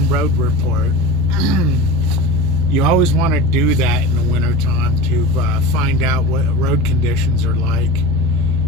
road report. You always want to do that in the wintertime to find out what road conditions are like.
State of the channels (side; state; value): both; normal; correlation 0.30